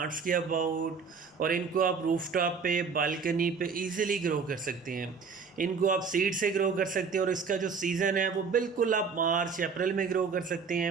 के अबाउट, और इनको आप रूफटॉप पे, बालकनी पे इजीली ग्रो कर सकते हैं। इनको आप सीड से ग्रो कर सकते हैं, और इसका जो सीज़न है वो बिल्कुल आप मार्च अप्रैल में ग्रो कर सकते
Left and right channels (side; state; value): left; quieter; 5.5 dB